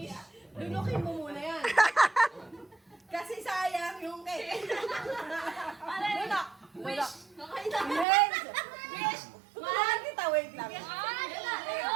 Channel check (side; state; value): left; drops out; at 8.1 s